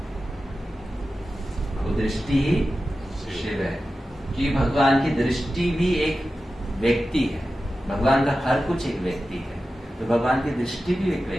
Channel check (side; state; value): both; normal; correlation 0.93